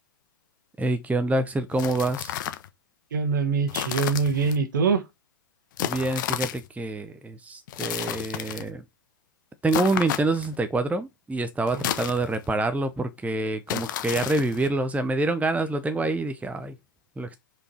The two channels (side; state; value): both; normal; correlation 0.46